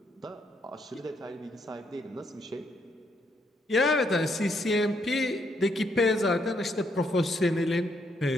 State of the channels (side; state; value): both; normal; correlation 0.75